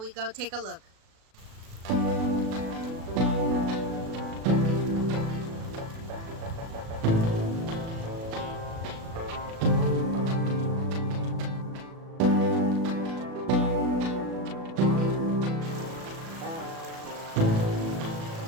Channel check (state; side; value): late; left; 37 ms